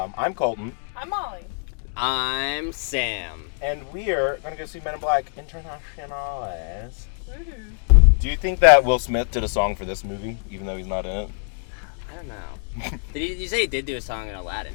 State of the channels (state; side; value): silent; right; 58 dB below the other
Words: I'm Colton. I'm Molly. I'm Sam. And we are going to go see Men in Black Internationales. Woohoo. Do you think that Will Smith did a song for this movie, even though he's not in it? I don't know. You say he did do a song in Aladdin,